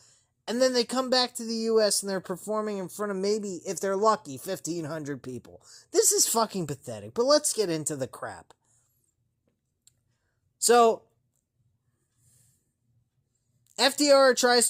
And then they come back to the U.S. and they're performing in front of maybe, if they're lucky, 1,500 people. This is fucking pathetic, but let's get into the crap. So, FTR tries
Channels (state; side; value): identical; both; correlation 1.00